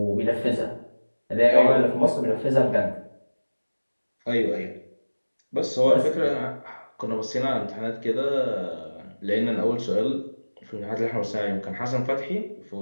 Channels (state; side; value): inverted; both; correlation -1.00